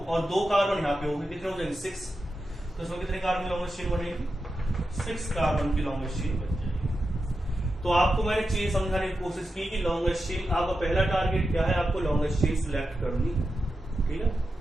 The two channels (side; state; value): both; normal; correlation 0.90